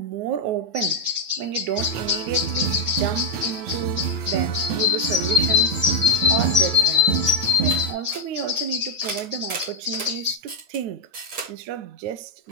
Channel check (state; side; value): late; left; 8.6 ms